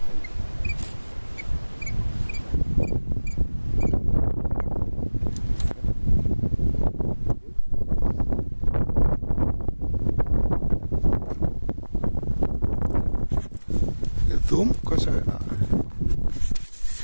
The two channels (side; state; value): both; inverted; correlation -1.00